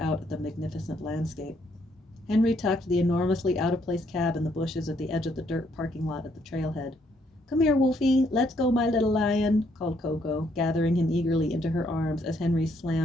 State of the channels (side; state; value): both; normal; correlation 0.70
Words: at the magnificent landscape. Henry tucked the enormously out-of-place cab in the bushes at the edge of the dirt parking lot at the trailhead. "Come here, Wolfie. Let's go, my little lion," called Coco, gathering him eagerly into her arms as Henry